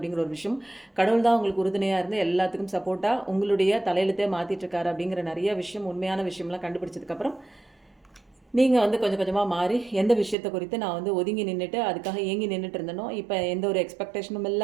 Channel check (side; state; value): left; drops out; at 10.4 s